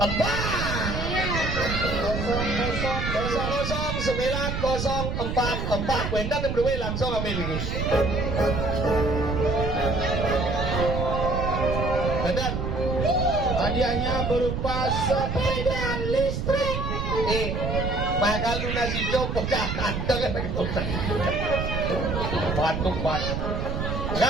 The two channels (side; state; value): right; noise; rumble, 2 dB below the sound